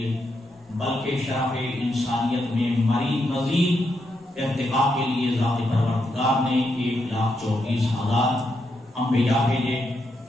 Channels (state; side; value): normal; both; correlation 0.81